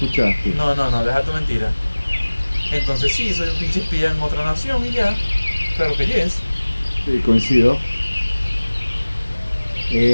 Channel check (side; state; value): both; inverted; correlation -1.00